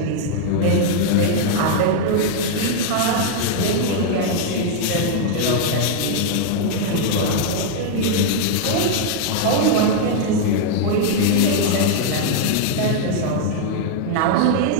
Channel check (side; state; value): both; different; correlation 0.00